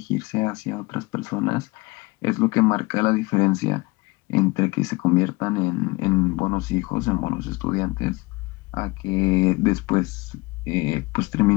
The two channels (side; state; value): right; quieter; 23.8 dB